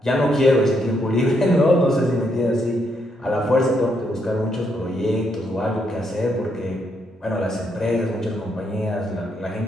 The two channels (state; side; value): normal; both; correlation 0.77